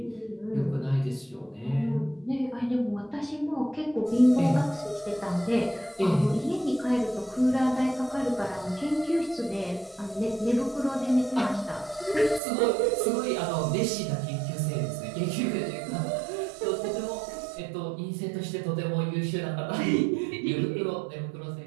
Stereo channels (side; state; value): left; drops out; at 12.4 s